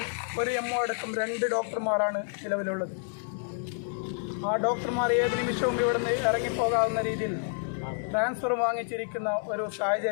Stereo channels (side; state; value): right; silent; digital silence